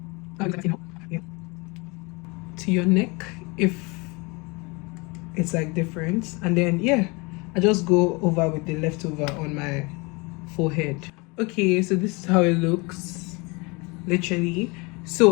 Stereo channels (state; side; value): quieter; right; 27.8 dB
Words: To your neck, if it's like different, and then yeah, I just go over with the leftover on my forehead. Okay, so this is how it looks, literally.